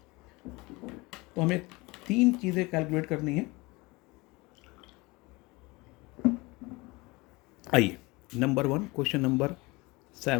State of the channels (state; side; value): quieter; right; 24.0 dB